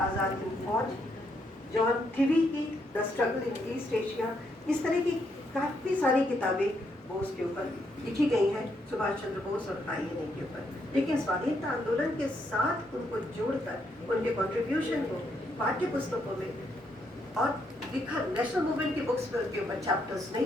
हिंद फौज, जॉन थिवी की the struggle in East Asia, इस तरह की काफ़ी सारी किताबें बोस के ऊपर लिखी गई हैं, सुभाष चंद्र बोस और INA के ऊपर। लेकिन स्वाधीनता आंदोलन के साथ उनको जोड़कर उनके कंट्रीब्यूशन को पाठ्य पुस्तकों में और लिखा नेशनल मूवमेंट की बुक्स पर उनके ऊपर चैप्टर्स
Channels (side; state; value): both; normal; correlation 0.76